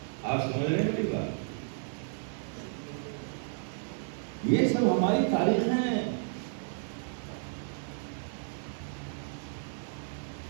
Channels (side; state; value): left; silent; digital silence